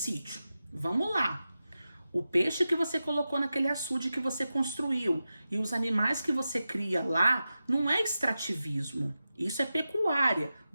Vamos lá. O peixe que você colocou naquele açude que você construiu e os animais que você cria lá não é extrativismo, isso é pecuária.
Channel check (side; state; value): both; inverted; correlation -0.92